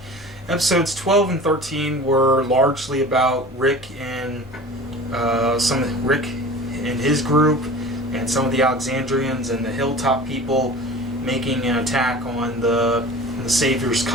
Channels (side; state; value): both; normal; correlation 0.39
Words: Episodes 12 and 13 were largely about Rick and Rick and his group and some of the Alexandrians and the Hilltop people making an attack on the Savior's